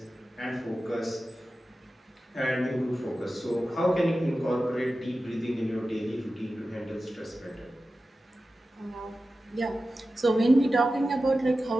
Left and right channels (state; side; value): normal; both; correlation 0.94